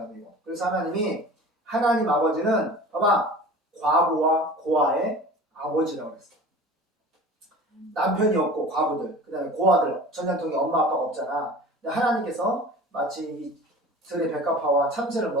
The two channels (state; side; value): normal; both; correlation 0.40